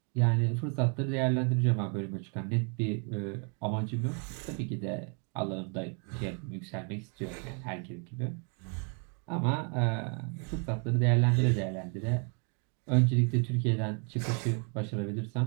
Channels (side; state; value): left; quieter; 38.9 dB